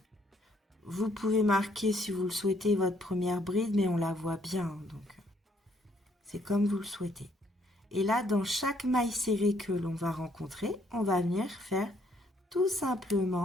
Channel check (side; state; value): both; normal; correlation 0.68